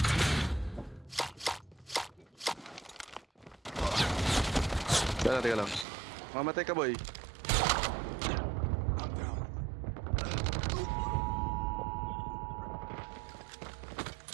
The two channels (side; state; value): left; drops out; at 5.9 s